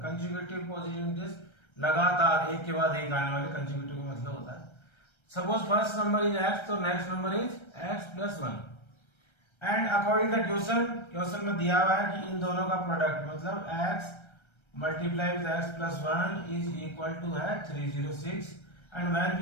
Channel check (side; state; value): right; late; 1.3 ms